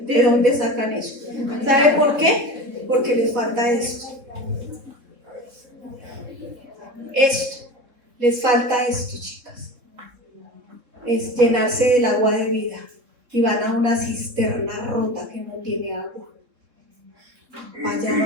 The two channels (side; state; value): left; late; 3.7 ms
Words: ¿de dónde sacan eso? ¿Sabe por qué? Porque les falta esto. Les falta esto, chicas. Es llenarse del agua de vida. Y van a una cisterna rota que no tiene agua. Allá